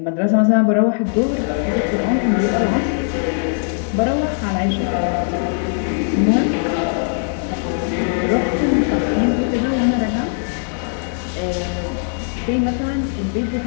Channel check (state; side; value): silent; right; 64 dB below the other